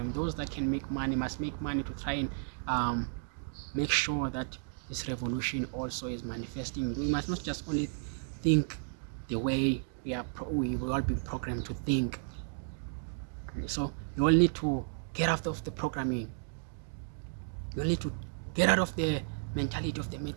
Those that can make money must make money to try and make sure that this revolution also is manifesting. We must not just only think the way we will all be programmed to think. So you all need to get out of the programming. You all need to get out of the mentality of the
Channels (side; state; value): left; silent; digital silence